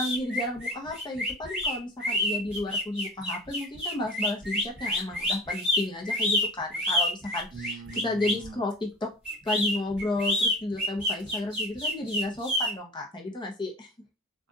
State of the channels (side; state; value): both; normal; correlation 0.37